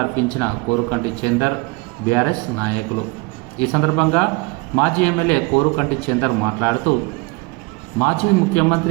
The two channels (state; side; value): quieter; left; 25.4 dB